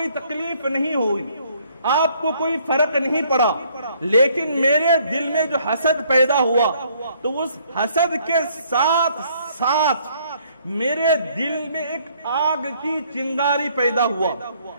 تکلیف نہیں ہوئی، آپ کو کوئی فرق نہیں پڑا، لیکن میرے دل میں جو حسد پیدا ہوا تو اس حسد کے ساتھ ساتھ میرے دل میں ایک آگ کی چنگاری پیدا ہوا،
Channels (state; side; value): inverted; both; correlation -0.63